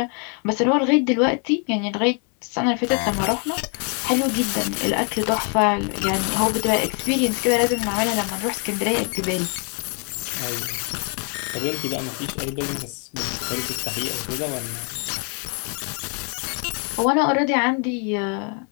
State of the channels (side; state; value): right; quieter; 38.7 dB